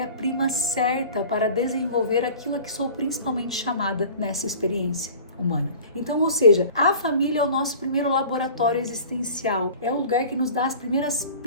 certa para desenvolver aquilo a que sou principalmente chamada nessa experiência humana. Então, ou seja, a família é o nosso primeiro laboratório existencial, é o lugar que nos dá as primeiras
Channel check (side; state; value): both; inverted; correlation -0.43